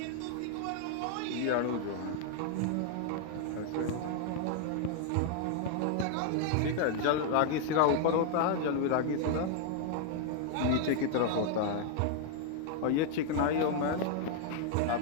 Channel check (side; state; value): both; different; correlation 0.00